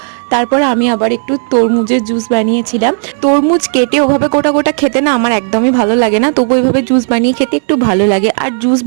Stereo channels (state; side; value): silent; left; 65 dB below the other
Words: তারপর আমি আবার একটু তরমুজের জুস বানিয়েছিলাম। তরমুজ কেটে ওভাবে গোটা গোটা খেতে না আমার একদমই ভালো লাগে না, তবু ওইভাবে জুস বানিয়ে খেতে একটু ভালো লাগে। আর জুস